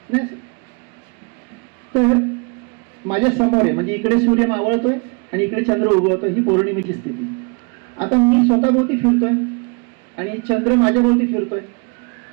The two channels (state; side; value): quieter; left; 33.2 dB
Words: नाही, तर माझ्या समोर आहे म्हणजे इकडे सूर्य मावळतोय आणि इकडे चंद्र उगवतोय, ही पौर्णिमेची स्थिती. आता मी स्वतःभोवती फिरतोय आणि चंद्र माझ्या भोवती फिरतोय.